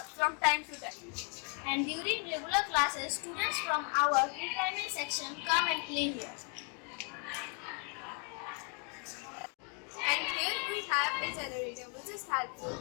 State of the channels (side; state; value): right; quieter; 39.2 dB